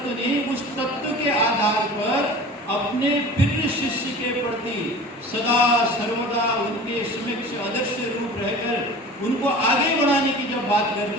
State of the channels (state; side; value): normal; both; correlation 0.39